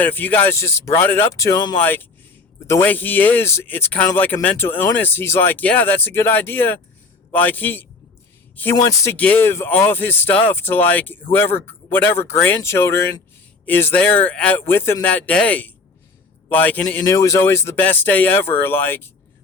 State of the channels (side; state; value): right; quieter; 4.0 dB